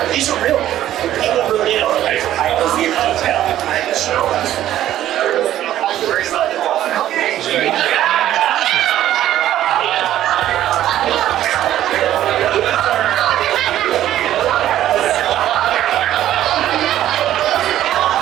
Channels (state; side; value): quieter; left; 12.6 dB